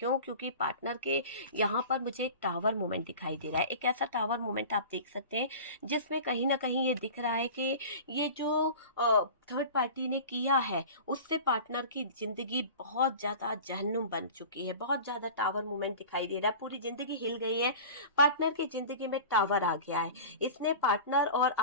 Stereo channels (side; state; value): both; inverted; correlation -0.36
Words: क्योंकि पार्टनर के यहाँ पर मुझे एक टावर मूवमेंट दिखाई दे रहा है, एक ऐसा टावर मूवमेंट आप देख सकते हैं जिसमें कहीं ना कहीं ये दिख रहा है कि ये जो थर्ड पार्टी ने किया है, उससे पार्टनर की जिंदगी बहुत ज्यादा जहन्नुम बन चुकी है। बहुत ज्यादा टावर मूवमेंट दिखाई दे रहा है, पूरी जिंदगी हिल गई है, पार्टनर की जिंदगी में टावर आ गया है। इसने पार्टनर और